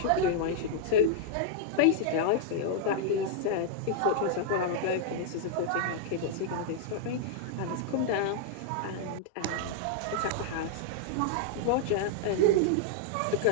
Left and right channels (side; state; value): both; different; correlation -0.01